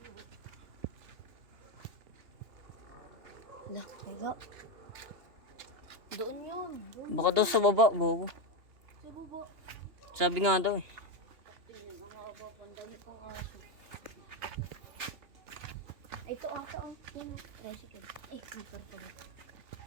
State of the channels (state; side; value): late; left; 2.8 ms